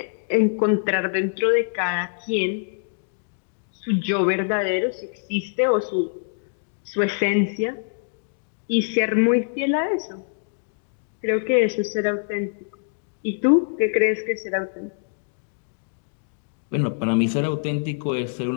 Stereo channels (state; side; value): silent; right; digital silence